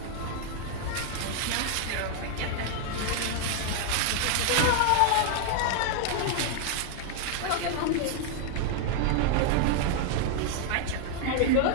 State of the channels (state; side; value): different; both; correlation 0.00